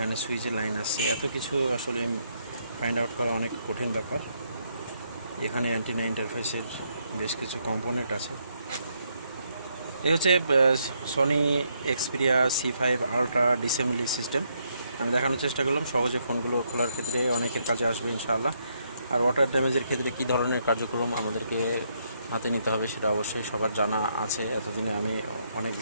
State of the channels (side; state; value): both; inverted; correlation -0.75